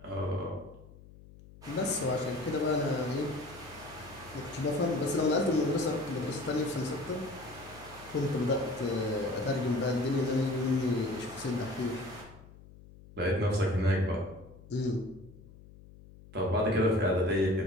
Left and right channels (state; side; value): noise; left; hum, 20 dB below the sound